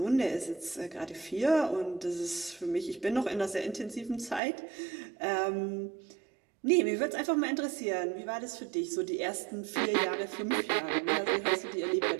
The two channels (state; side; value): drops out; left; at 4.4 s